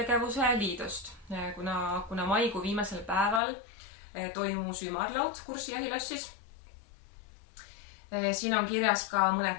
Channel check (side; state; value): right; drops out; at 3.4 s